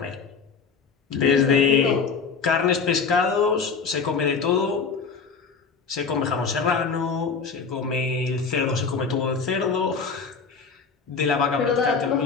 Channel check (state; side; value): quieter; right; 5.3 dB